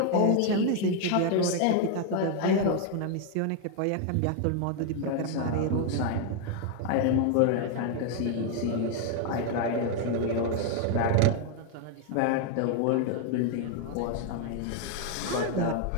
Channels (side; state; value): both; different; correlation 0.00